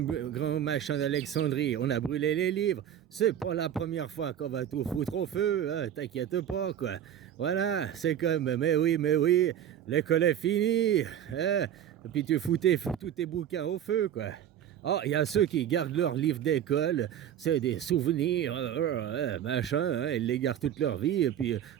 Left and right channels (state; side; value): quieter; left; 10.1 dB